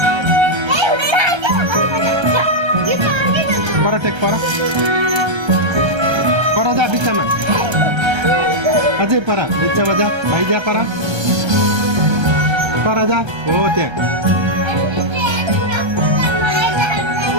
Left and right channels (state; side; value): late; left; 1.3 ms